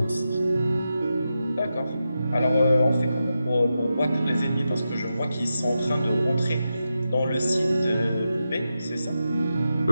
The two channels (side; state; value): both; inverted; correlation -0.89